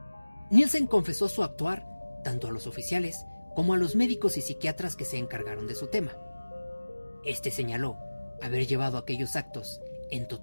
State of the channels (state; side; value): inverted; both; correlation -1.00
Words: Nielsen confesó su actuar tanto a los oficiales como a los médicos y psiquiatras que se encargaron de su tema. Este señaló haber llevado aquellos actos en